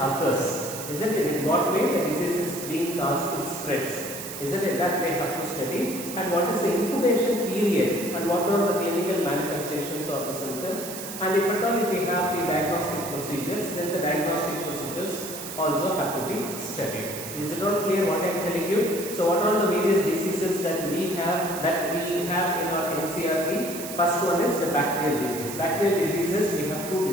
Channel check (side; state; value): right; noise; hiss, 9 dB below the sound